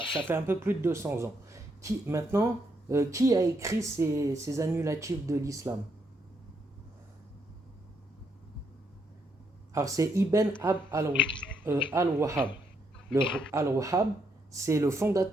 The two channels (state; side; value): normal; both; correlation 0.76